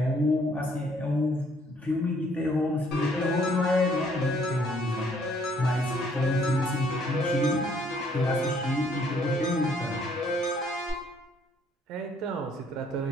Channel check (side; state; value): both; normal; correlation 0.65